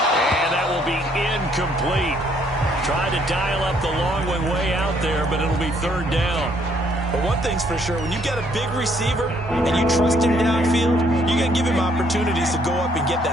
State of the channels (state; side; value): normal; both; correlation 0.67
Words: And that will be incomplete. Tried to dial up the long one way out there, but it'll be 3rd down. But one thing's for sure, when you got a big receiver and you trust him downfield, you're going to give him opportunities to go up and get